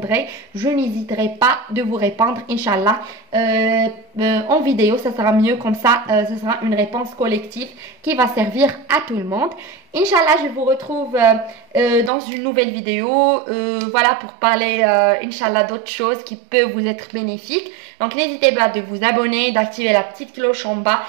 je n'hésiterai pas de vous répondre, Inch'Allah. En vidéo, ça sera mieux comme ça, ça sera une réponse collective qui va servir à tout le monde. Inch'Allah, je vous retrouve dans une nouvelle vidéo, pour parler, Inch'Allah, d'autres choses qui peuvent vous être bénéfiques. Donc, n'hésitez pas de vous abonner, d'activer la petite cloche en bas.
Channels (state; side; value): drops out; left; at 12.1 s